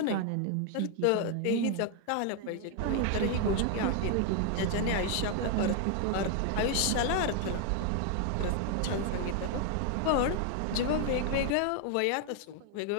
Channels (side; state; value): both; different; correlation 0.00